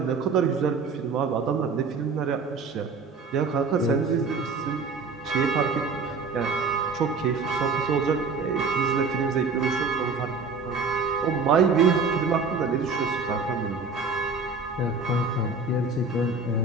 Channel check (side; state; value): left; quieter; 4.4 dB